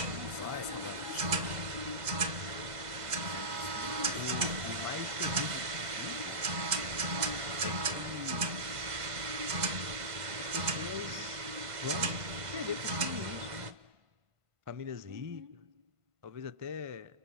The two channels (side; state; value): left; late; 1.5 ms